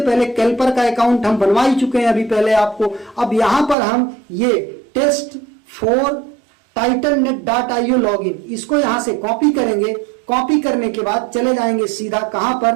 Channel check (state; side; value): drops out; left; at 3.8 s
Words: पहले कैल्पर का अकाउंट हम बनवा ही चुके हैं अभी पहले आपको। अब यहां पर हम ये test4titannet.io लॉगिन, इसको यहां से कॉपी करेंगे। कॉपी करने के बाद चले जाएंगे सीधा कहां